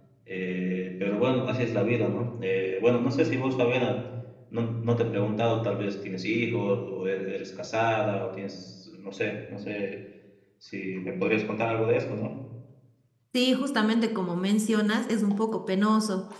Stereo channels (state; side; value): identical; both; correlation 1.00